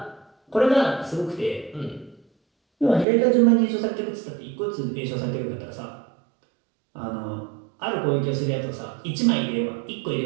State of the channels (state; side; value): drops out; left; at 3.1 s